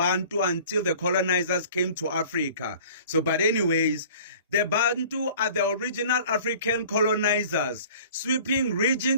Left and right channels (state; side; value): inverted; both; correlation -0.47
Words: until the colonizers came to Africa. But anyways, the Bantu are the original African colonizers, sweeping region